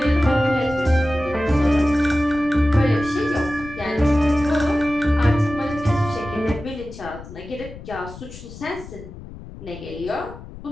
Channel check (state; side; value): noise; left; rumble, 15 dB below the sound